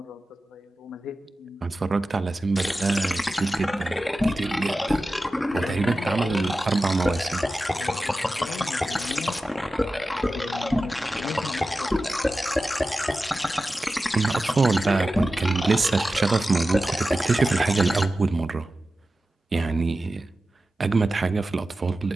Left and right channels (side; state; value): both; normal; correlation 0.94